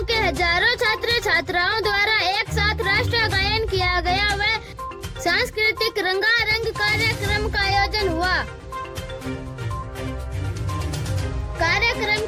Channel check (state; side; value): identical; both; correlation 1.00